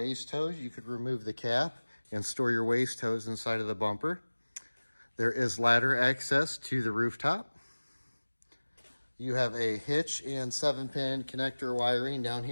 hose. You could remove the cap and store your waste hose inside of the bumper. There is ladder access to the rooftop. You have a hitch and 7-pin connector wiring down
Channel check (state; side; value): inverted; both; correlation -1.00